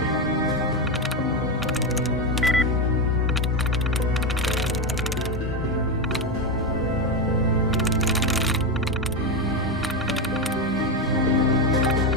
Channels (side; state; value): both; normal; correlation 0.12